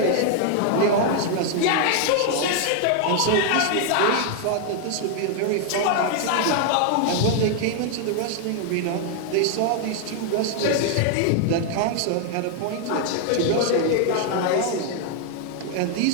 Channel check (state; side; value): different; both; correlation 0.00